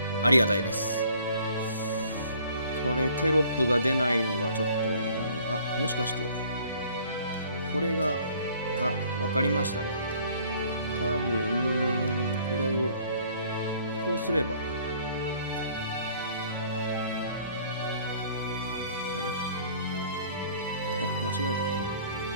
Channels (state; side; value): inverted; both; correlation -0.57